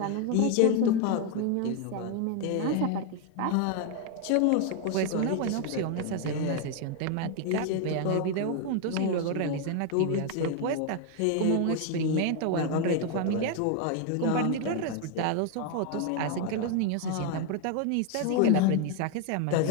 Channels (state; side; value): different; both; correlation 0.01